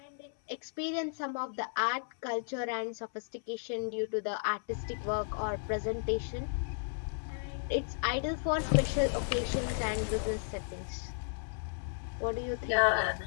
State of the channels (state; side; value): silent; right; 55 dB below the other